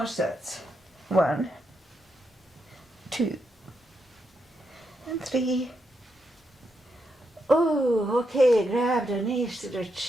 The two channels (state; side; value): normal; both; correlation 0.82